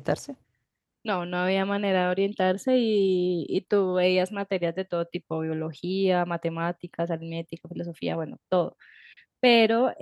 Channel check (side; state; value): both; identical; correlation 1.00